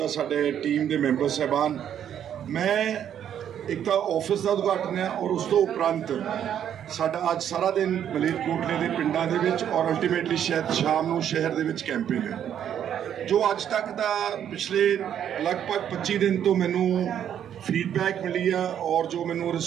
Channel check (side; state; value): left; quieter; 9.6 dB